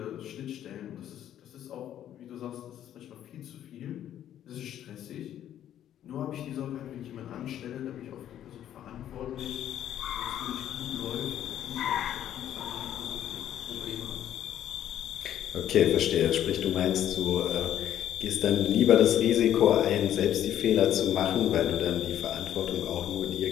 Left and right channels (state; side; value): quieter; right; 11.1 dB